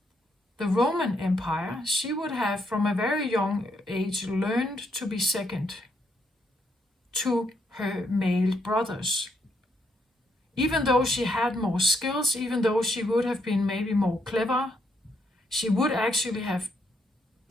the Roman Empire, she would have from a very young age learned to be second to her male brothers. Even though she had more skills, even though she would have been maybe more clever, she would actually have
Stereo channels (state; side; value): normal; both; correlation 0.76